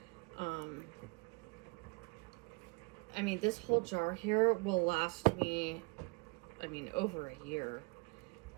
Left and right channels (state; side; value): quieter; left; 29.8 dB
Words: I mean, this whole jar here will last me, I mean, over a year.